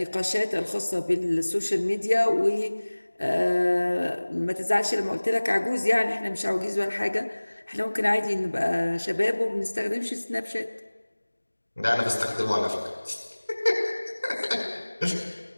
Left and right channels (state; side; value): inverted; both; correlation -1.00